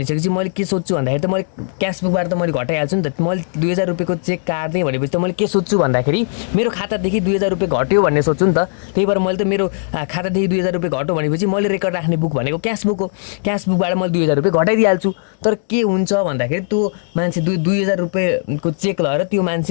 मैले के सोध्छु भन्दाखेरि त मैले क्यासबुकबाट त मैले घटाइहाल्छु नि त। मैले 2000 रुपियाँको चेक काट्दै भनेपछि त मैले के सोध्छु भन्दाखेरि मेरो खातादेखि 2000 रुपियाँ घट्यो भन्ने सोध्छु नि त। त्यही भएर मैले त मेरो खातादेखि 2000 रुपियाँ घट्यो भनेपछि मैले रेकर्ड राख्ने बुक भनेको क्यासबुक हो, क्यासबुकबाट मैले 2000 रुपियाँ घटाइदिइहाल्छु। तर के हुन्छ भन्दाखेरि त्यो मान्छे 2000 रुपियाँको चेक लगेर त्यो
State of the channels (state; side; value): silent; right; digital silence